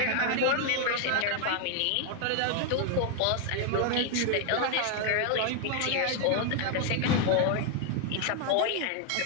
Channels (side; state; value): both; different; correlation 0.00